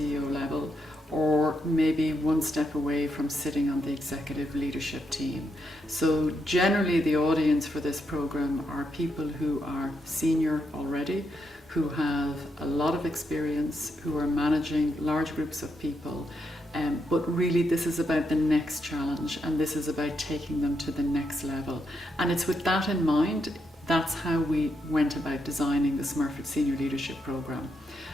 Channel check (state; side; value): normal; both; correlation 0.81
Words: level or maybe one step away from sitting on the executive leadership team. So generally the audience for this program are people who are senior already, who have a lot of experience, who are managing large groups of people, but really this is about the next challenge, and this is about taking them to the next level. And it's with that in mind, that's how we went about designing the Smurfs Senior Leadership Programme.